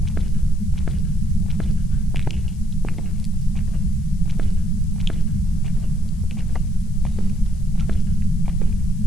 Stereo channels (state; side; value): noise; left; hiss, 28 dB below the sound